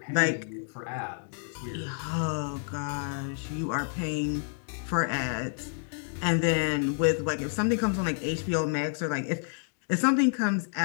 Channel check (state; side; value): silent; right; digital silence